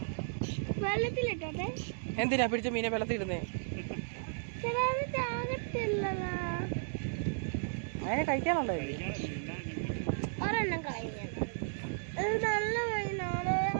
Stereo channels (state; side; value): silent; left; digital silence